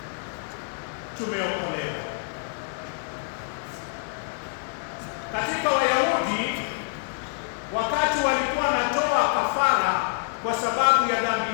tumeokolewa. Katika Wayahudi, wakati walikuwa wanatoa kafara kwa sababu ya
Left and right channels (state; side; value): silent; right; 59 dB below the other